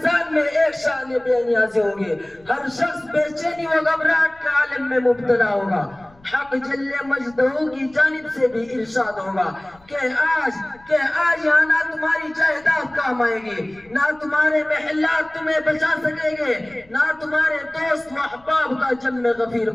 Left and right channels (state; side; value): noise; left; rumble, 29 dB below the sound